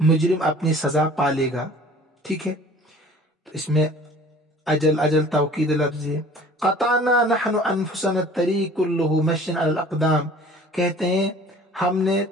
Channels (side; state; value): both; normal; correlation 0.48